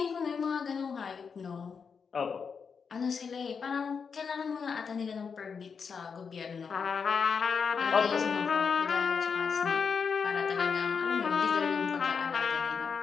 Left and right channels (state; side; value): quieter; right; 5.9 dB